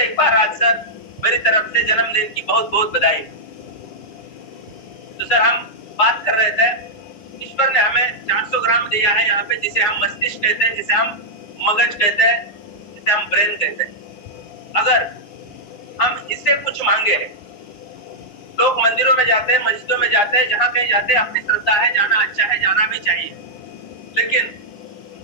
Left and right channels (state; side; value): late; right; 9.7 ms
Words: एक बार राज सर मेरी तरफ से जन्मदिन की बहुत बहुत बधाई। तो सर हम बात कर रहे थे, ईश्वर ने हमें 400 ग्राम दिया है यहाँ पे, जिसे हम मस्तिष्क कहते हैं, जिसे हम मगज कहते हैं, जिसे हम ब्रेन कहते हैं। अगर हम इससे कुछ मांगे, लोग मंदिरों में जाते हैं, मस्जिदों में जाते हैं, जहां कहीं जाते हैं, अपनी श्रद्धा है, जाना अच्छा है, जाना भी चाहिए, लेकिन